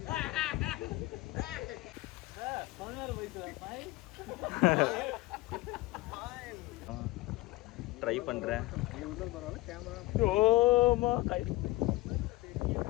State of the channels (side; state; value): right; quieter; 19.5 dB